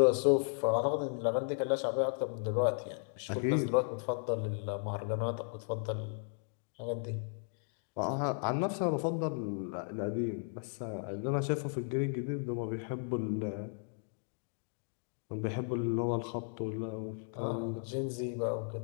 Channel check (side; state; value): right; silent; 54 dB below the other